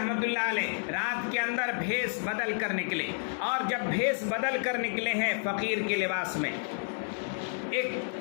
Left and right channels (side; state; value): right; silent; 58 dB below the other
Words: اللہ علیہ رات کے اندر بھیس بدل کر نکلے، اور جب بھیس بدل کر نکلے ہیں فقیر کے لباس میں، ایک